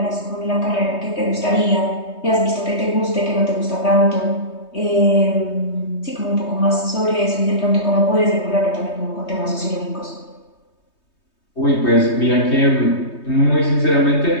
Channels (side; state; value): right; late; 3.2 ms